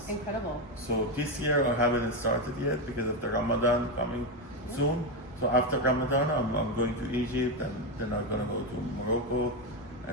Incredible. So this year I haven't started yet because of the Ramadan coming soon. So after Ramadan, I'm going to Egypt, and then I'm gonna go to Morocco,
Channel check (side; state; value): both; normal; correlation 0.10